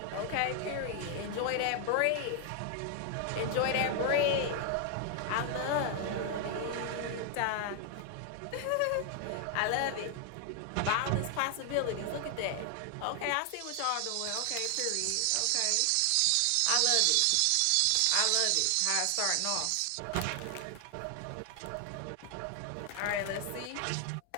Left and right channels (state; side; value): different; both; correlation 0.00